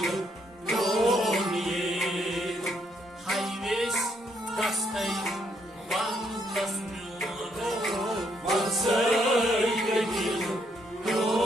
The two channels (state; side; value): normal; both; correlation 0.73